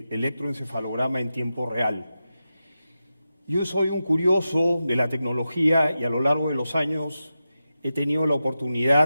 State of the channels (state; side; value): inverted; both; correlation -0.91